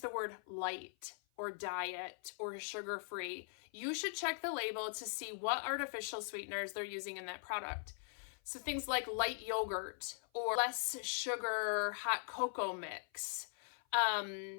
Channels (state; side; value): silent; right; 50 dB below the other